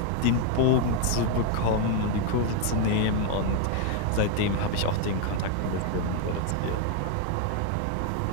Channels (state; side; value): different; both; correlation 0.01